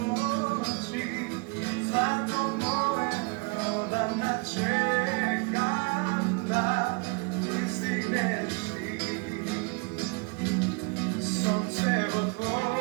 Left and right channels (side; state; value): left; quieter; 32.0 dB